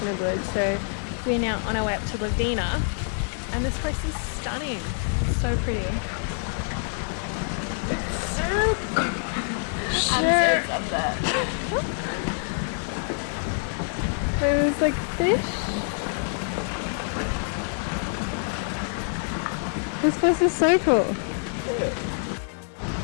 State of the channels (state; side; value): silent; right; 57 dB below the other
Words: the woods. So we're now on our way up to Lovina, and this place is stunning. It's so pretty. It's so cool. Sure. I'm so that. There's like fish. This place is so cool.